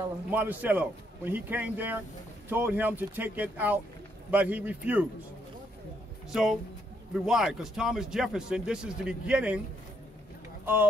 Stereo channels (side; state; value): both; normal; correlation 0.74